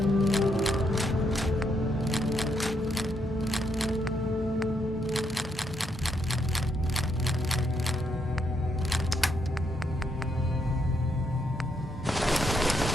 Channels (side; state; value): both; normal; correlation 0.77